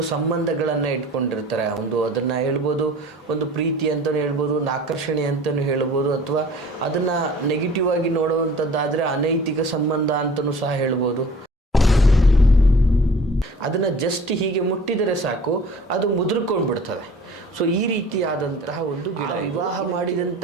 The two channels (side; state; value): both; normal; correlation 0.46